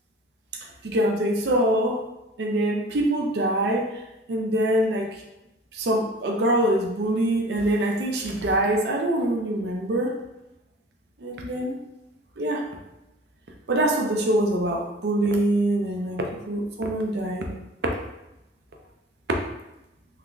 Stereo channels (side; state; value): both; normal; correlation 0.43